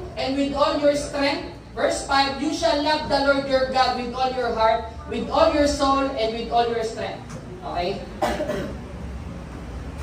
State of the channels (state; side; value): identical; both; correlation 1.00